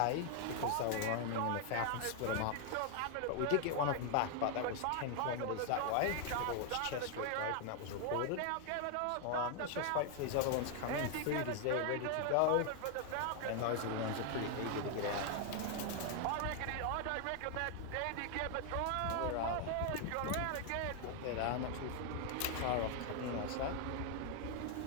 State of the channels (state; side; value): different; both; correlation 0.00